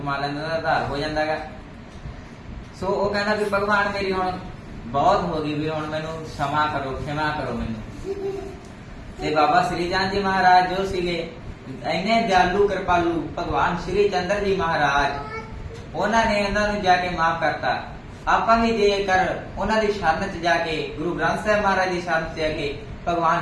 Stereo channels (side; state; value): both; identical; correlation 1.00